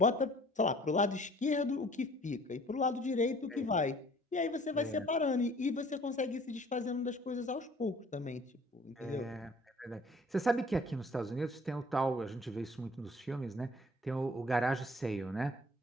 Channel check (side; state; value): both; normal; correlation 0.53